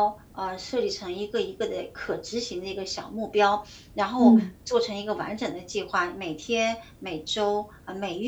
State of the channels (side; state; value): both; identical; correlation 1.00